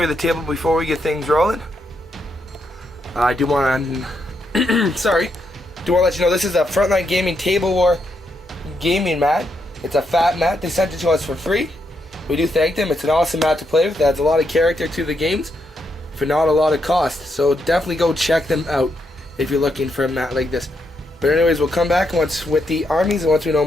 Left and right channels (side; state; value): both; normal; correlation 0.79